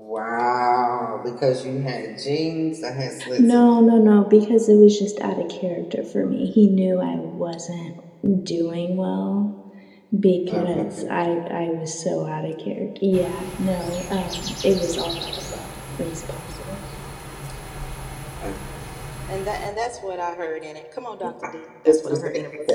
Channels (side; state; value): both; identical; correlation 1.00